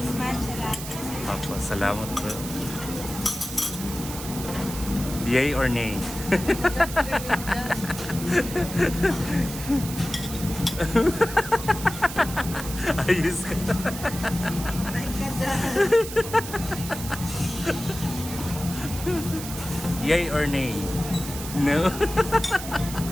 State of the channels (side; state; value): right; noise; hiss, 10 dB below the sound